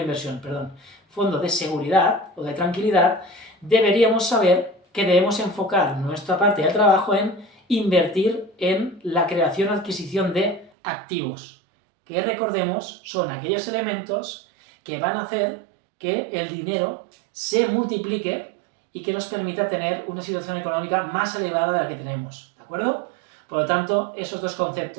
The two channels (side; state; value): left; drops out; at 10.7 s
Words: perdón, fondo de seguridad o de tranquilidad, deberíamos saber que debemos enfocar nuestra parte de trabajo en invertir en la creación o adquisición de activos, que recordemos son aquellos elementos que van a hacer que el dinero se multiplique y que nos permita tener una situación económica más elevada de la que tenemos, ¿de acuerdo? Por lo tanto, esos dos